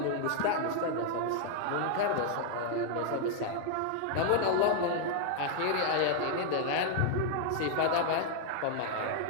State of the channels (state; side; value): different; both; correlation 0.00